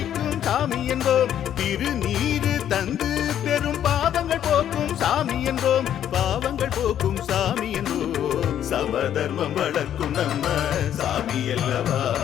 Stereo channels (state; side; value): quieter; right; 10.3 dB